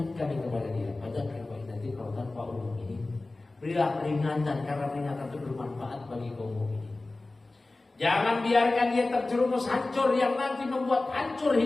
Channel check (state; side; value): quieter; right; 3.1 dB